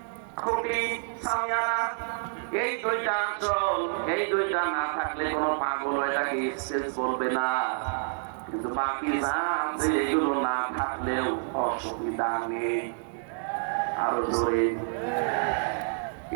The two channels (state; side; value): silent; left; digital silence